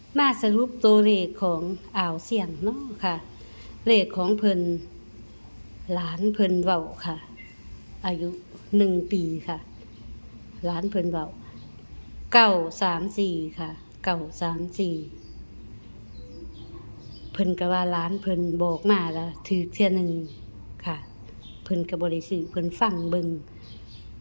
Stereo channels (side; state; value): both; inverted; correlation -1.00